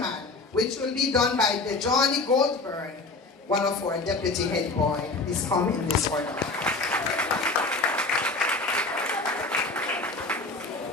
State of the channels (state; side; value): quieter; right; 3.4 dB